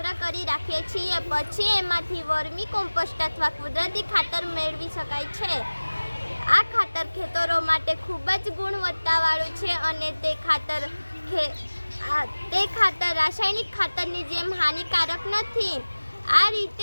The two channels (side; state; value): both; inverted; correlation -1.00